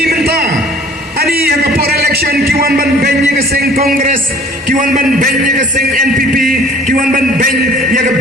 menta ani yaga por election kiwan ban benye ga seng congress kiwan ban benye ga seng NPP kiwan ban ben yaga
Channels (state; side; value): normal; both; correlation 0.51